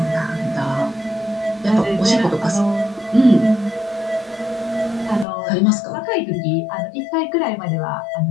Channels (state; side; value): drops out; right; at 5.2 s